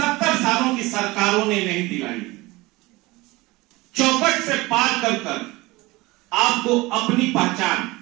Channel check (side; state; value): left; quieter; 21.5 dB